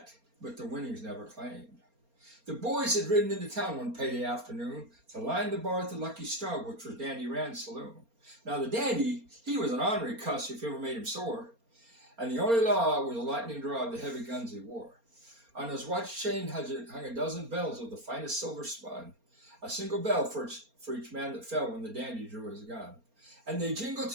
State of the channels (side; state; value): left; late; 4.3 ms